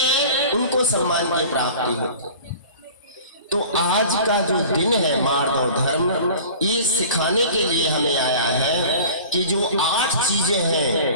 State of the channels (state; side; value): inverted; both; correlation -0.42